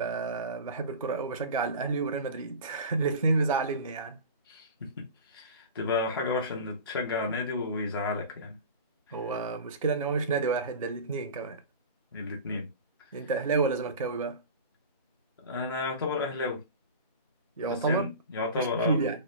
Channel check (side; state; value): both; inverted; correlation -0.33